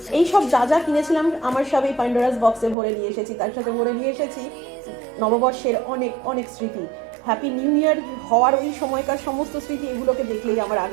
এই সব যা যা কিনেছিলাম আমার সব এই প্যান্ডোরাস বক্সে ভরে নিয়ে এসেছি। তার সাথে ভরে নিয়ে এসেছি নববর্ষের অনেক অনেক স্মৃতি। হ্যাপি নিউ ইয়ার হওয়ার ওই সময়কার সমস্ত স্মৃতি, এগুলোকে দেখলেই আমার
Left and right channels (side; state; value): left; drops out; at 2.8 s